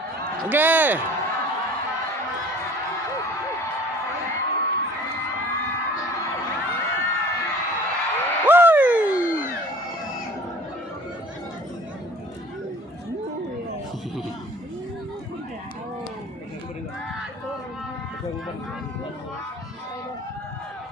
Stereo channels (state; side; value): normal; both; correlation 0.48